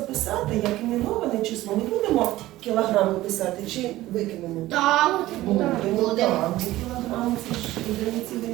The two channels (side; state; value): left; quieter; 16.4 dB